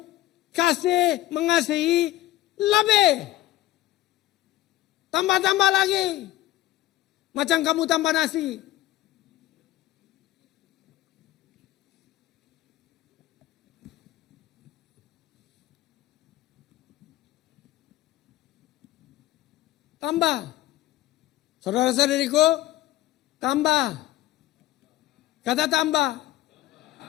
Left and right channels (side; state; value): right; quieter; 15.6 dB